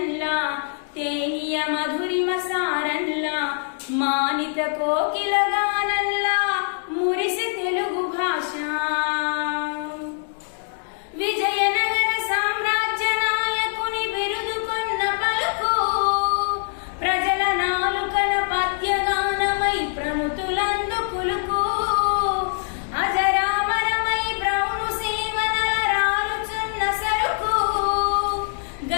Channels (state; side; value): silent; right; 61 dB below the other